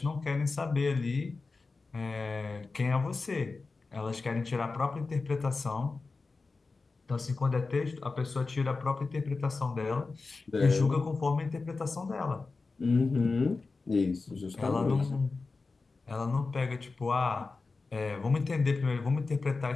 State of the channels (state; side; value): quieter; right; 4.0 dB